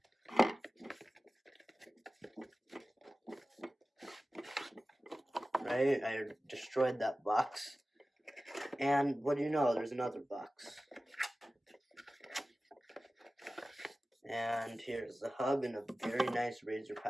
Right? I destroyed that box. And what do you know? There's another box. And here's the hub in a very nice Razer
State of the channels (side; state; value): both; normal; correlation 0.96